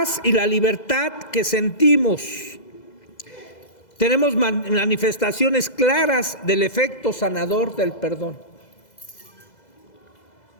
y la libertad que sentimos. Tenemos manifestaciones claras del efecto sanador del perdón.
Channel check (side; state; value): right; late; 2.0 ms